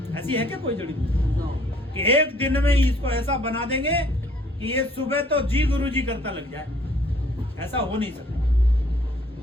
ऐसी है क्या कोई जड़ी बूटी कि एक दिन में ही इसको ऐसा बना देंगे कि ये सुबह तो जी गुरु जी करता लग जाए? ऐसा हो नहीं सकता।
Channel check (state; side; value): normal; both; correlation 0.59